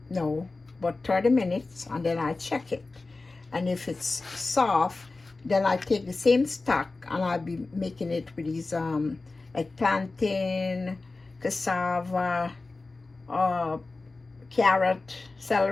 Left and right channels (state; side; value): quieter; right; 3.5 dB